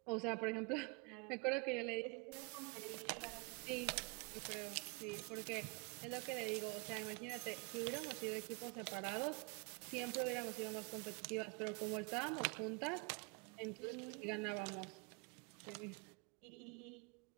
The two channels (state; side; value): quieter; left; 29.4 dB